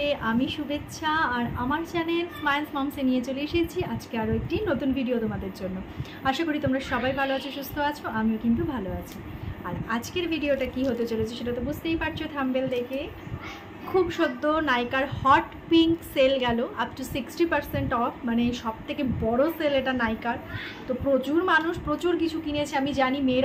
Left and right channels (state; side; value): identical; both; correlation 1.00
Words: আমি শুভেচ্ছা আর আমার চ্যানেল স্মাইলস মমসে নিয়ে চলে এসেছি আজকে আরও একটি নতুন ভিডিও তোমাদের জন্য। আশা করি তোমরা সবাই ভালো আছো, সুস্থ আছো, আমিও কিন্তু ভালো আছি। আর আজকের ভিডিওটা কি হতে চলেছে সেটা তো বুঝতেই পারছো থাম্বনেল দেখে। খুব সদ্য নাইকার হট পিঙ্ক সেল গেল আপ টু 60% অফ, মানে সব থেকে বড়ো সেল এটা নাইকার। তো প্রচুর মানুষ প্রচুর কিছু কিনেছে, আমি জানি